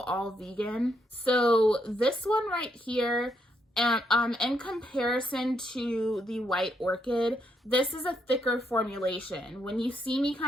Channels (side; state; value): both; normal; correlation 0.77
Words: all vegan. So this one right here, in comparison to the White Orchid, this is a thicker formulation. When you see me